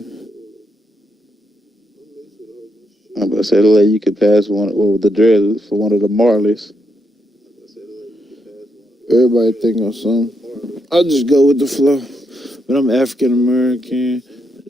I'm about to say the lady you could pass one with the dreads for one of the Marleys. Everybody think I'm something. I'll just go with the flow. But I'm African American,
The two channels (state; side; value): normal; both; correlation 0.80